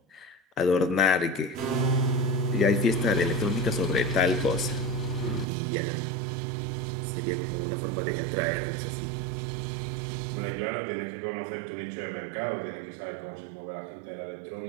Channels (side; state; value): left; drops out; at 5.5 s